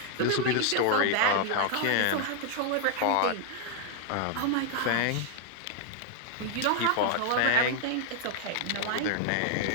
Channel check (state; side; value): different; both; correlation 0.00